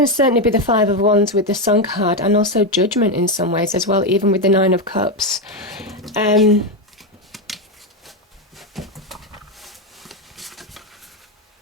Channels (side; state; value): both; normal; correlation 0.08